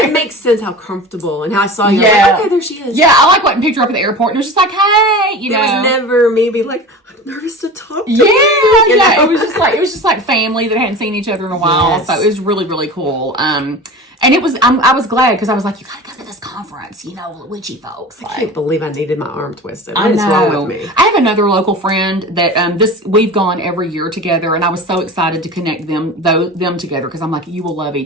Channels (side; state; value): both; normal; correlation 0.34